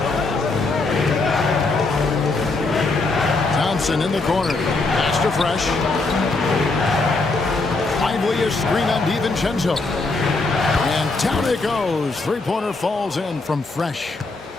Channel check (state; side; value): quieter; right; 3.5 dB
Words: Thompson in the corner. Pass to Fresh. Lively a screen on DiVincenzo. And down it goes. Three-pointer falls in from Fresh.